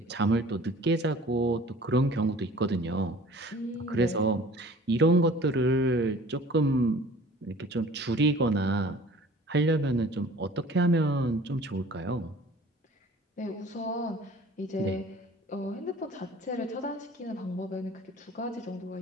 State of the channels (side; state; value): both; normal; correlation 0.48